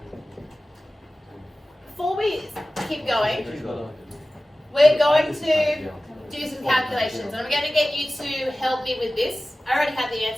before we keep going, we're going to do some calculations. And I'm going to get you to help me with this. I already had the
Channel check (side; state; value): both; normal; correlation 0.96